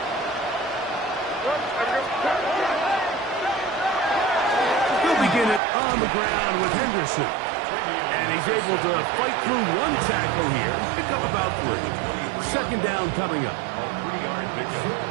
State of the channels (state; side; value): drops out; left; at 5.6 s